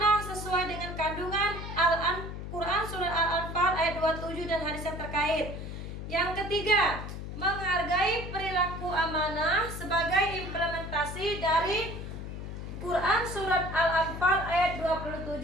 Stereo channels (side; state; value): left; noise; hum, 8 dB below the sound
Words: sesuai dengan kandungan Al-Quran surat Al-Anfal ayat 27 dan hadis yang terkait. Yang ketiga, menghargai perilaku amanah sebagai implementasi dari Quran surat Al-Anfal ayat 27